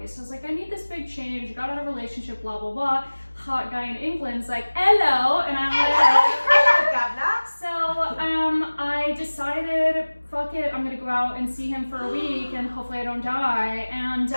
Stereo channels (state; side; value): inverted; both; correlation -1.00